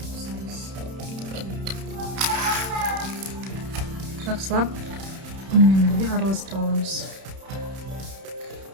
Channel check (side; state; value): left; late; 31 ms